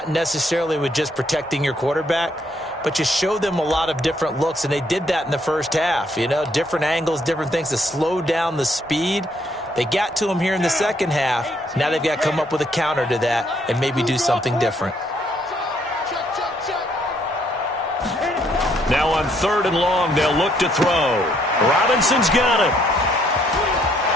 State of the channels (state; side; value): normal; both; correlation 0.69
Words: necessarily with just protecting your quarterback, but you show them a lot of different looks, and they did that in the first half. You know, different angles, different things to slow down the speed. They got to him here in the second half. Now they've got to come up with a counter to that and maybe do something different. Now on 3rd and long, they'll look to throw. Robinson's got it.